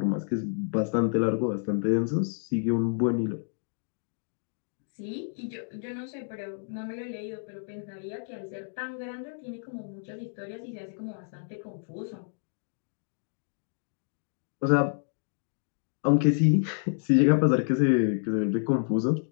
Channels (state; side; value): silent; right; digital silence